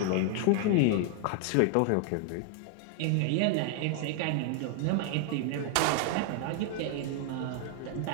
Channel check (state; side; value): different; both; correlation 0.00